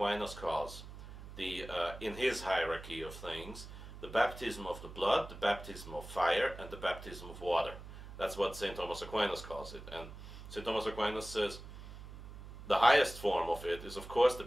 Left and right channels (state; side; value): noise; right; hum, 13 dB below the sound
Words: calls in his hierarchy of things, the baptism of the blood, the baptism of fire, and the baptism of water. That's what St. Thomas Aquinas calls it. And St. Thomas Aquinas says the highest form of it is, of course, the